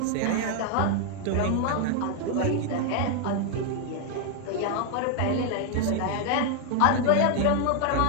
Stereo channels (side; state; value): both; different; correlation 0.00